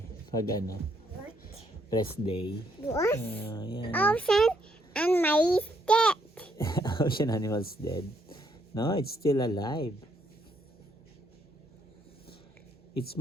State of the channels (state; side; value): normal; both; correlation 0.73